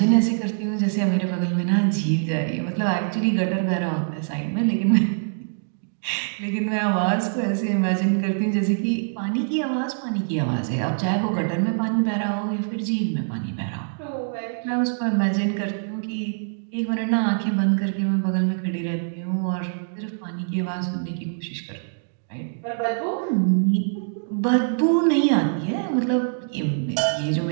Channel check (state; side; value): silent; left; digital silence